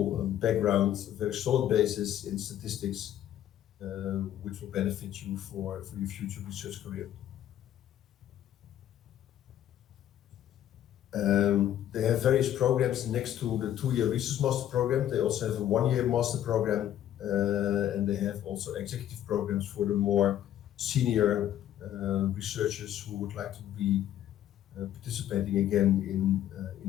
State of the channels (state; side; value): quieter; right; 11.5 dB